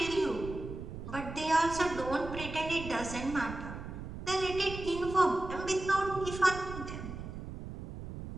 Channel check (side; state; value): right; noise; rumble, 9 dB below the sound